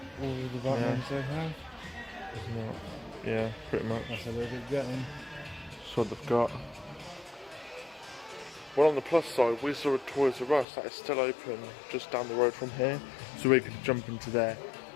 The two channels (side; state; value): right; drops out; at 10.7 s